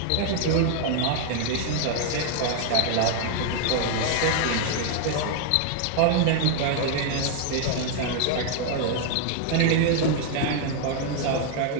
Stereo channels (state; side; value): different; both; correlation 0.00